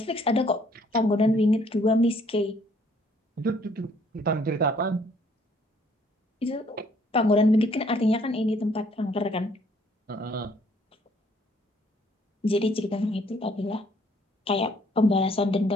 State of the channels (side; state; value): both; normal; correlation 0.63